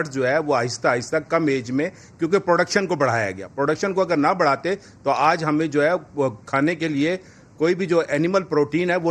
जो है वो आहिस्ता आहिस्ता कम एज में, क्योंकि प्रोडक्शन को बढ़ाया गया, प्रोडक्शन को अगर ना बढ़ाते तो आज हमें जो है वो खाने के लिए कोई भी जो एनिमल प्रोटीन है वो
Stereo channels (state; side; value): identical; both; correlation 1.00